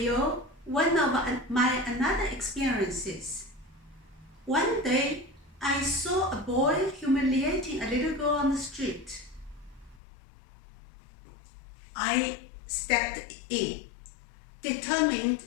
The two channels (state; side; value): drops out; right; at 10.0 s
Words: one of my another experiences. One day, I saw a boy humiliating a little girl on the street. I stepped in, determined